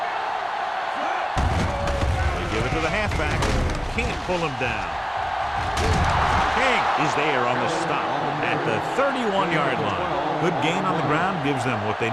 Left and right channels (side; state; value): both; identical; correlation 1.00